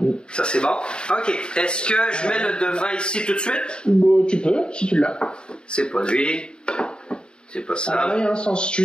Ça, c'est bon. OK. Est-ce que je mets le devant ici tout de suite? Bon, tu peux, si tu l'as. C'est pas lui. C'est pas ça. Alors là, il y a un sens.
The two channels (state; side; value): late; right; 0.050 ms